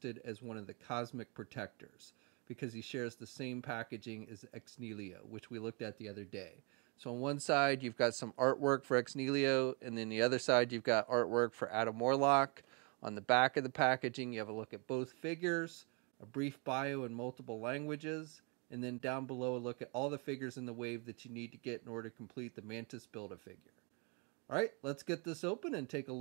as one of the Cosmic Protectors because he shares the same packaging as Ex Nihilo, which we looked at the other day. So on one side you've got some artwork for Ex Nihilo, and then the other side you've got artwork for Adam Warlock. On the back of the packaging you have a look at both figures, a brief bio in multiple languages, and then down below a look at all the figures in the wave that you need to get in order to complete the Mantis Build-A-Figure. Alright, let's get this open and take a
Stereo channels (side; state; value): left; quieter; 33.2 dB